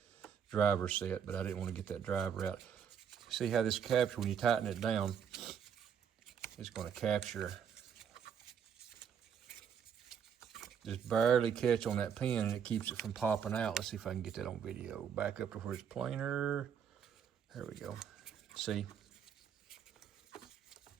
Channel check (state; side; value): quieter; left; 7.9 dB